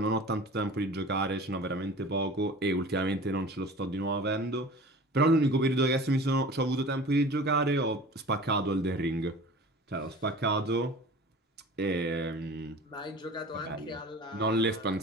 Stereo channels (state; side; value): normal; both; correlation 0.40